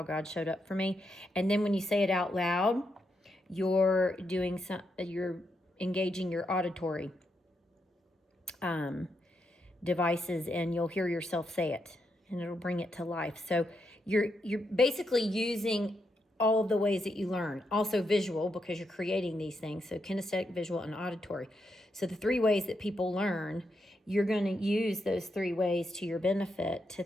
God showed up for me. And then when you say it out loud, you're engaging your auditory devices, and you'll hear yourself say it, and it'll bring it to life. So you're basically using all of the ways that you learn. Also visual, because you're creating these things. So kinesthetic, visual, and auditory. So the 3 ways that people learn, you're going to use those 3 ways to your benefit to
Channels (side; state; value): both; normal; correlation 0.82